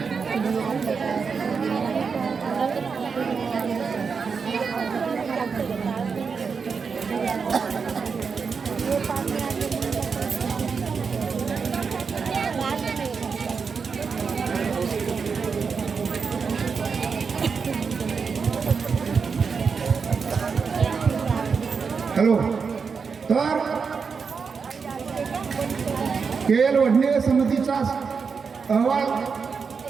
हॅलो. तर केएल वडणे समितीचा अहवाल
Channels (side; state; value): left; quieter; 5.5 dB